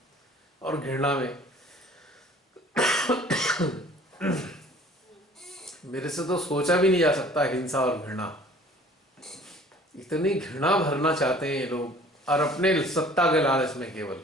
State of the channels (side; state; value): both; normal; correlation 0.51